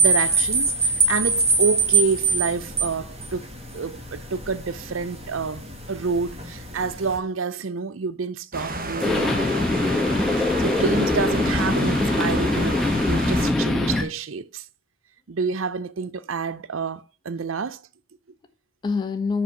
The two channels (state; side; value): normal; both; correlation 0.29